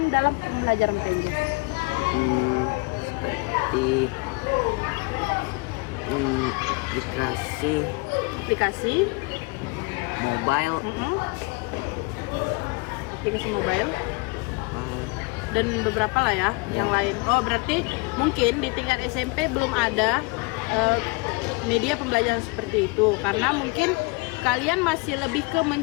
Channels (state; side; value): quieter; right; 28.1 dB